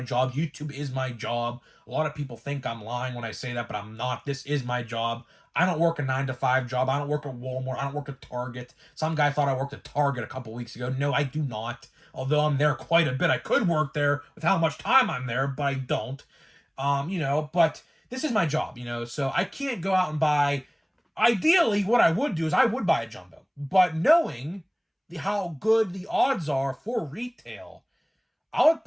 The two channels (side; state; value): both; identical; correlation 1.00